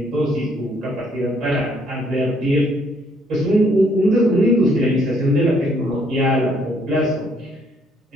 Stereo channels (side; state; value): both; normal; correlation 0.67